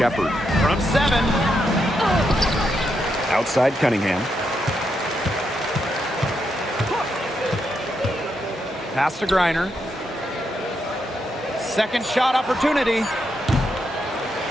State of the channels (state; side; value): normal; both; correlation 0.81